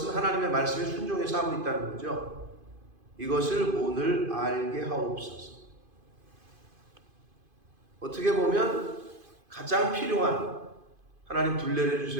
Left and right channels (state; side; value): late; left; 2.5 ms